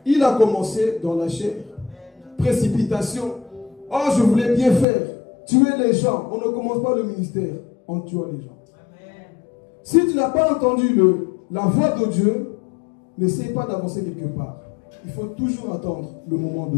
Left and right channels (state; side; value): drops out; right; at 4.9 s